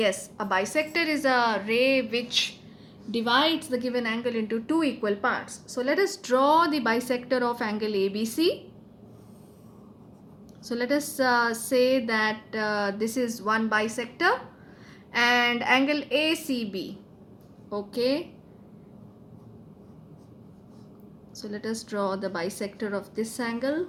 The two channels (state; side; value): identical; both; correlation 1.00